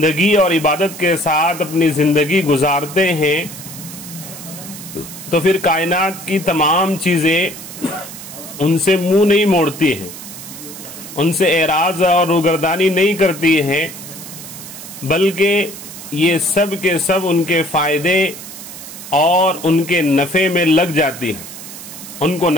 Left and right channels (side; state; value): right; noise; hiss, 13 dB below the sound